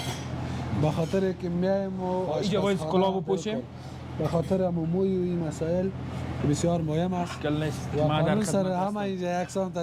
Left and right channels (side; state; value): both; identical; correlation 1.00